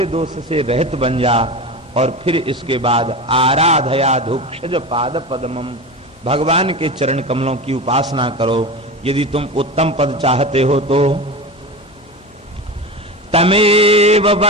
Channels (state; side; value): normal; both; correlation 0.26